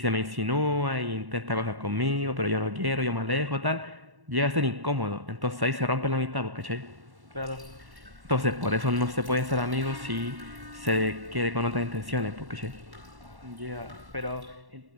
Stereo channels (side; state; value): left; late; 1.1 ms